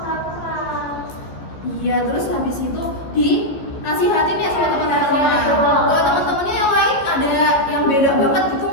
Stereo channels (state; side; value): late; right; 14 ms